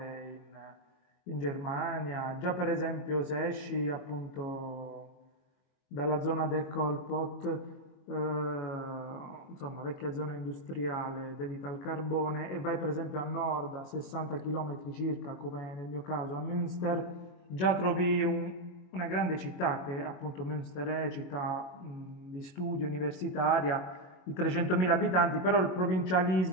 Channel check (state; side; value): late; right; 22 ms